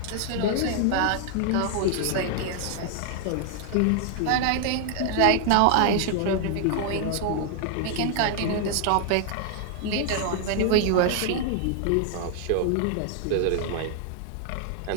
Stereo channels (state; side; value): different; both; correlation 0.00